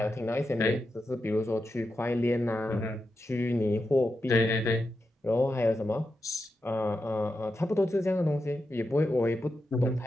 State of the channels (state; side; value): normal; both; correlation 0.88